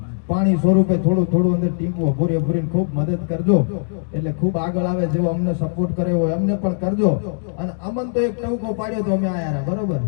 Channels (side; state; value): right; silent; digital silence